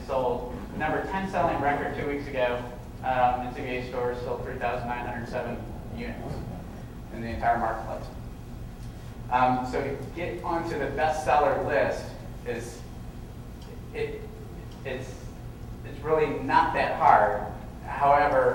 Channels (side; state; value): both; identical; correlation 1.00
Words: sold. Number 10 selling record 2 weeks ago in CBA stores sold 3,907 units in the entire marketplace. So to get onto the bestseller list it's really not that hard.